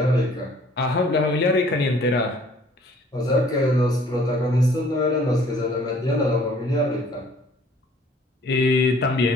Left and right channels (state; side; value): normal; both; correlation 0.56